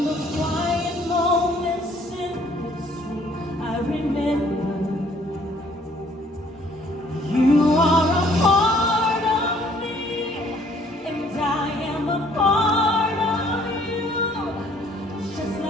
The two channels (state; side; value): normal; both; correlation 0.60